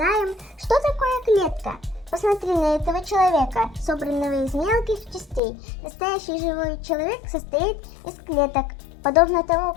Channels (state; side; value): drops out; right; at 5.4 s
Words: что такое клетка. Посмотри на этого человека, собранного из мелких частей. Настоящий живой человек состоит из клеток, подобно тому,